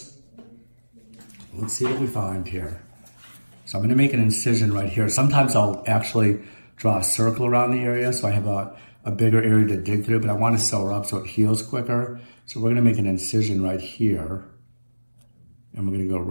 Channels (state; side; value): inverted; both; correlation -1.00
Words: Let's see what we find here. So I'm going to make an incision right here. Sometimes I'll actually draw a circle around the area so I have a bigger area to dig through, but I want to sew her up so it heals quicker. So we're going to make an incision right here. And we're going to go